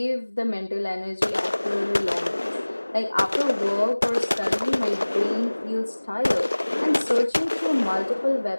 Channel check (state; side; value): inverted; both; correlation -1.00